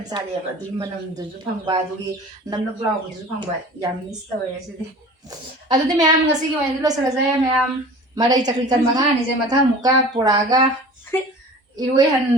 ꯆꯥꯔꯛꯑꯦꯕ ꯑꯗꯨꯒꯤ ꯃꯅꯝꯗꯨꯁꯨ ꯐꯪꯕ ꯑꯗꯨꯒꯤ ꯅꯞ ꯂꯥꯎꯕꯗꯨꯁꯨ ꯐꯪꯕ ꯌꯥꯝ ꯃꯤꯁ ꯇꯧꯋꯦ ꯉꯁꯤꯗꯤ ꯑꯗꯨꯗꯤ ꯃꯌꯥꯝ ꯉꯁꯤꯒꯤ ꯑꯣꯏꯅꯗꯤ ꯂꯣꯏꯁꯤꯜꯂꯁꯦ ꯃꯌꯥꯝ ꯃꯔꯩ ꯆꯀ꯭ꯔꯤ ꯀꯟ ꯃꯉꯥꯅꯤꯁꯦ ꯃꯊꯪ ꯑꯃꯨꯛꯀ ꯄꯨꯔꯛꯑꯒ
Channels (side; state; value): both; normal; correlation 0.41